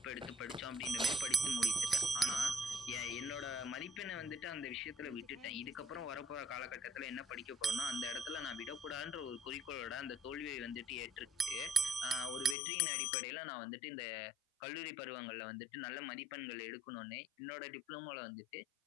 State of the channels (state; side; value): drops out; right; at 12.6 s